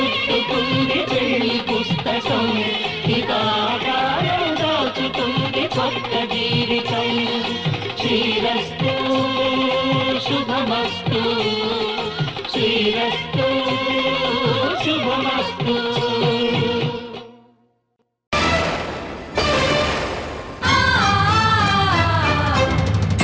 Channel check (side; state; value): both; identical; correlation 1.00